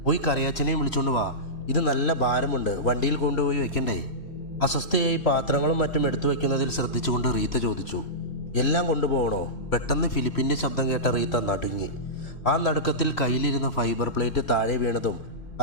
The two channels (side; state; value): right; late; 3.1 ms